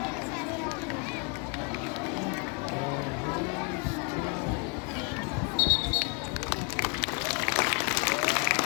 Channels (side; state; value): right; quieter; 33.6 dB